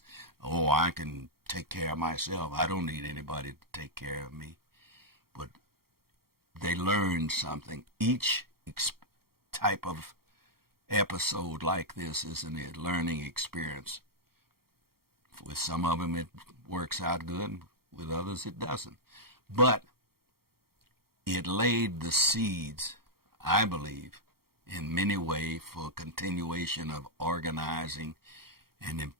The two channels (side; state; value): left; late; 0.94 ms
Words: I can take care of myself. I don't need anybody to take care of me. But they learned something. Each type of episode like this is a learning experience. With some of them it works out good, with others it doesn't. But it laid the seeds, I believe, in many ways for continuation of organizing and